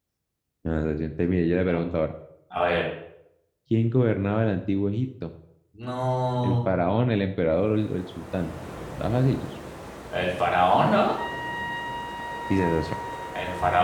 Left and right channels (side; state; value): both; identical; correlation 1.00